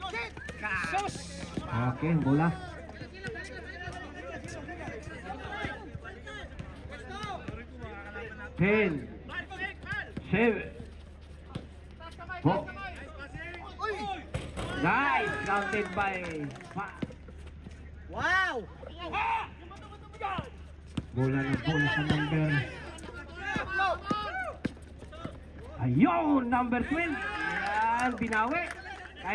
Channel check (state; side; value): identical; both; correlation 1.00